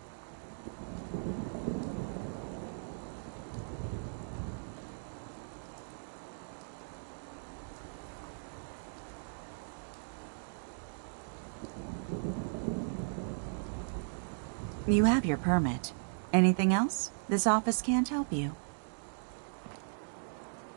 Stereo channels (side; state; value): left; silent; digital silence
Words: You have your permit. Anything else? This office can't help you.